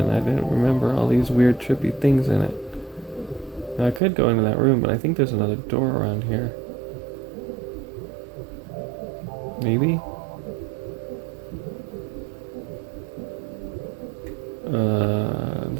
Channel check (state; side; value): drops out; left; at 4.0 s